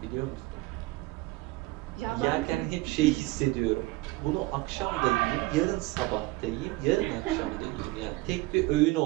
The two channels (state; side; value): quieter; left; 20.8 dB